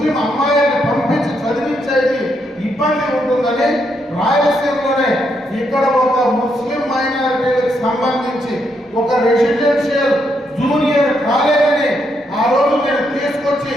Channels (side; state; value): both; normal; correlation 0.78